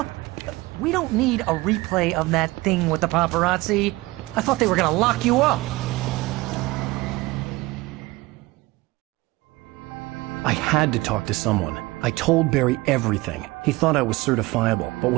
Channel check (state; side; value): quieter; left; 20.9 dB